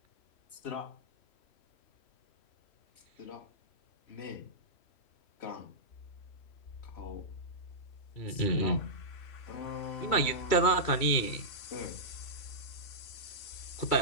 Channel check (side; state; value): right; late; 3.1 ms